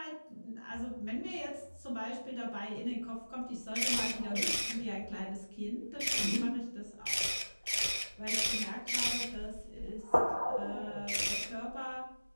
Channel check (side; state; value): both; inverted; correlation -1.00